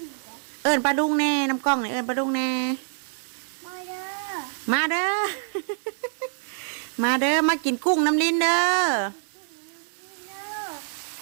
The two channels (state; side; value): silent; left; digital silence